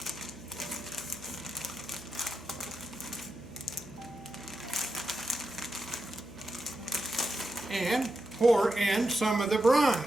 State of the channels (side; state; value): left; noise; hum, 17 dB below the sound